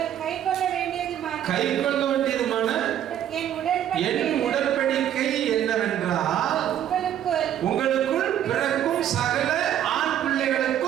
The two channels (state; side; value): quieter; left; 10.7 dB